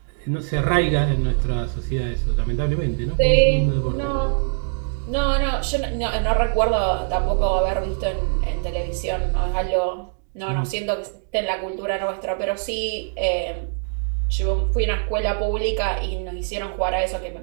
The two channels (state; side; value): silent; left; digital silence